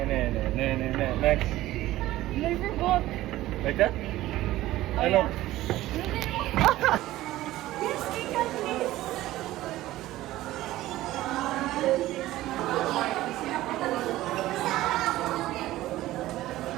Next. I forgot. Like that? Ano? Yes, Kika, please.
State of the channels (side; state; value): left; quieter; 15.9 dB